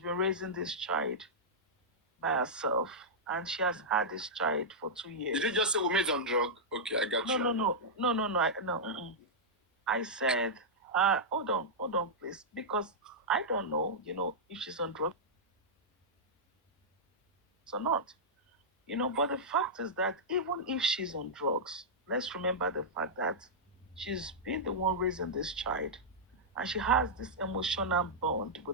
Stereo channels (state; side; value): normal; both; correlation -0.10